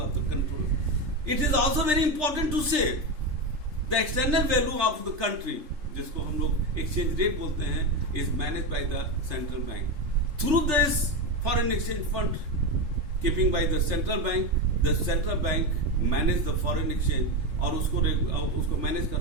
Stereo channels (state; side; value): late; left; 3.4 ms